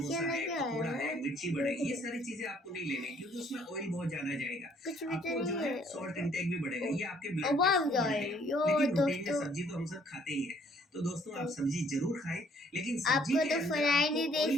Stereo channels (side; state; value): both; normal; correlation 0.62